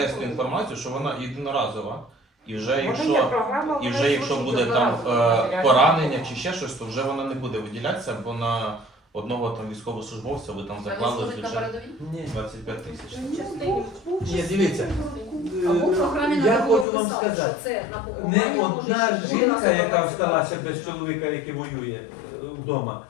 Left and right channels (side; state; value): right; drops out; at 16.9 s